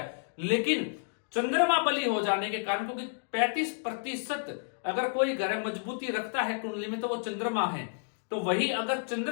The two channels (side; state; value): right; silent; digital silence